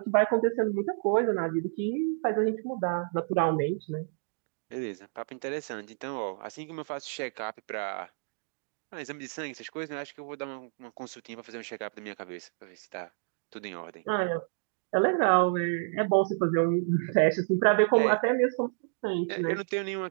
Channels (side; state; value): left; silent; 58 dB below the other